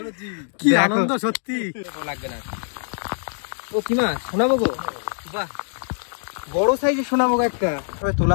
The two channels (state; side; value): silent; right; digital silence